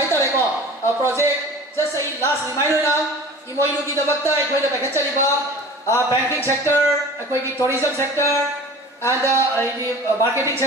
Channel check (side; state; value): both; normal; correlation 0.40